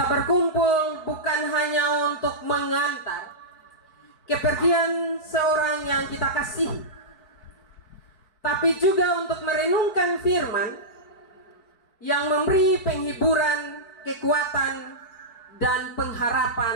berkumpul bukan hanya untuk mengantar kepergian seorang yang kita kasihi, tapi juga untuk merenungkan firman yang memberi penghiburan, kekuatan, dan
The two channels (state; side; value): late; right; 4.6 ms